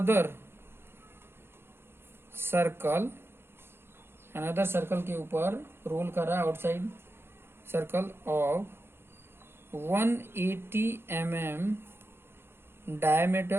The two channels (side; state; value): left; late; 0.11 ms